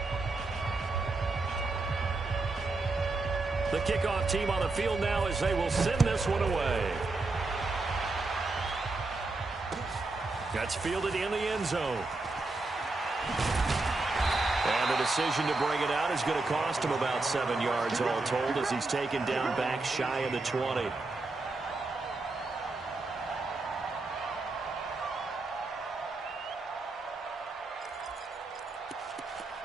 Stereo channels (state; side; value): quieter; left; 3.4 dB